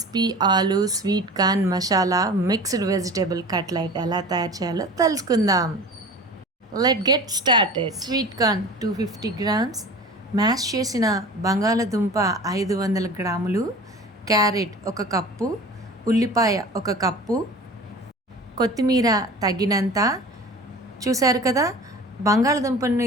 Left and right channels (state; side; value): normal; both; correlation 0.38